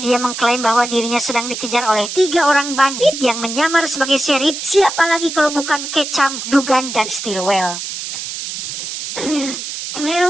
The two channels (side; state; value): right; noise; hiss, 7 dB below the sound